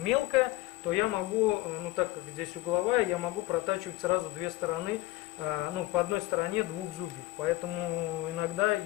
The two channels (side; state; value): right; quieter; 18.2 dB